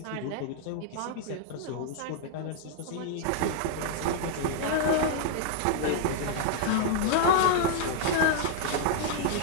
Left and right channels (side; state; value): both; different; correlation -0.01